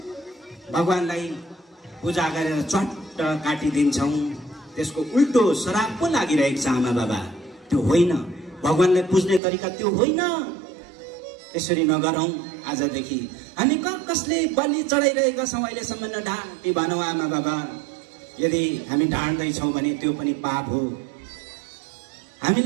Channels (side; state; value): left; drops out; at 9.4 s